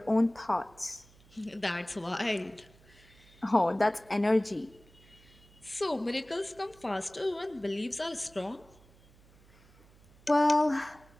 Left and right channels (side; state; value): right; noise; hum, 27 dB below the sound